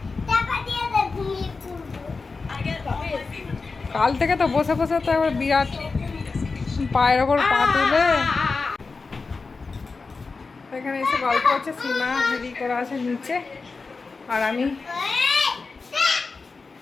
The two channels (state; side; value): quieter; right; 4.2 dB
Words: কাল থেকে তো বসে বসে তো একবার বিরাট পায়ের ওপর পা তুলে এখানে এসে গল্প হচ্ছে। সীমা রেডি করা আছে নিচে, আর আমি